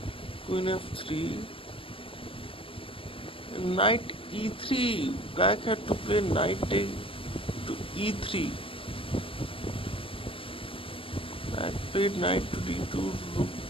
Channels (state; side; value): late; right; 0.26 ms